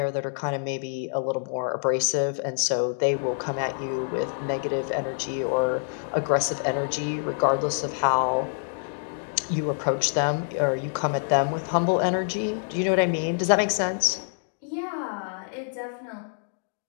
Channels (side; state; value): right; silent; digital silence